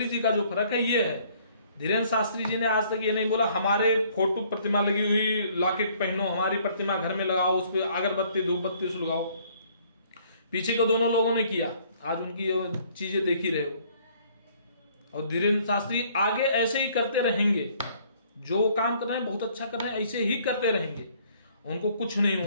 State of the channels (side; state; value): both; inverted; correlation -0.61